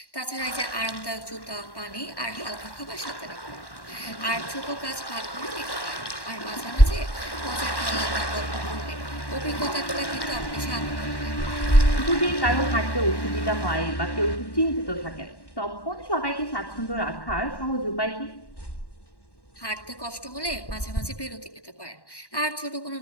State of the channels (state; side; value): late; right; 1.1 ms